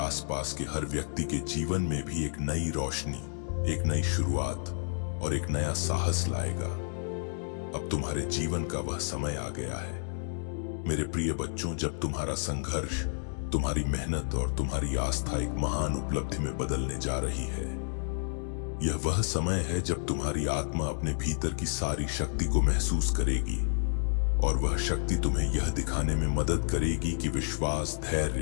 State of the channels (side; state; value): right; silent; digital silence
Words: के हर व्यक्ति के जीवन में भी एक नई रोशनी, एक नई शुरुआत और एक नया साहस लाएगा। अब तुम्हारे जीवन का वह समय आ गया है मेरे प्रिय बच्चों, जब तुम्हारा संघर्ष, तुम्हारी मेहनत और तुम्हारी आस्था एक महान उपलब्धि में बदलने जा रही है। यह वह समय है जब तुम्हारी आत्मा अपने भीतर की सारी शक्ति को महसूस करेगी और वह शक्ति तुम्हें यह दिखाने में मदद करेगी कि विश्वास,